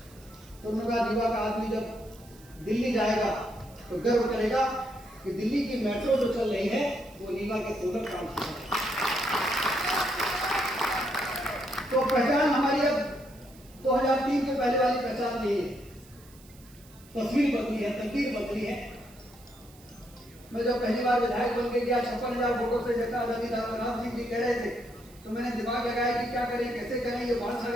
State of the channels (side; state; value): right; noise; hiss, 25 dB below the sound